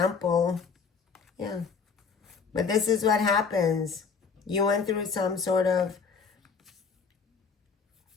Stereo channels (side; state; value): right; quieter; 5.5 dB